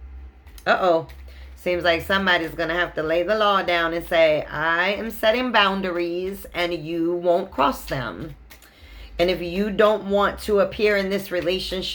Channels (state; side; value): identical; both; correlation 1.00